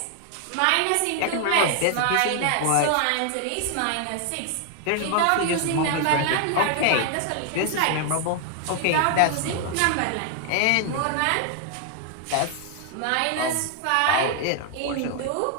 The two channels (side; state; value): both; different; correlation 0.00